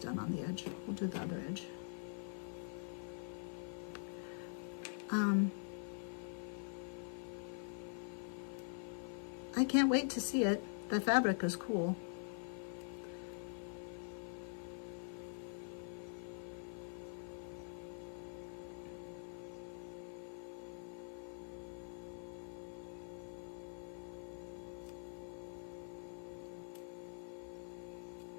on the edge. We'll do the other edge. I can't wait to see it. The fabric is cool.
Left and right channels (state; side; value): silent; right; digital silence